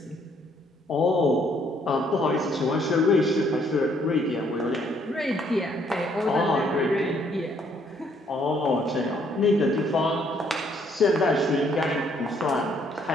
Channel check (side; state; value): both; normal; correlation 0.67